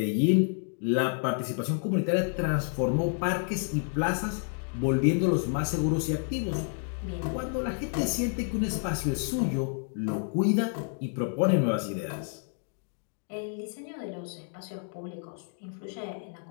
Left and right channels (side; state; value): right; silent; 58 dB below the other